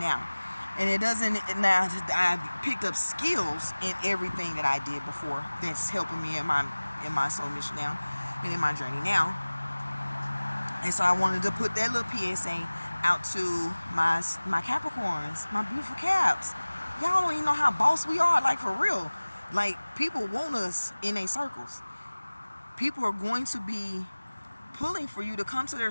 And it doesn't, now I've picked up skills in everything that I did before that's helping me in my soul mission now, and in my journey now. And so I wanted to put that little PSA out to my Capricorns, my beautiful Caps. Y'all don't even know how boss we are, like, for real. Like, people want us in their circles. People are going to be pulling for you to come to their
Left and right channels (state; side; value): inverted; both; correlation -1.00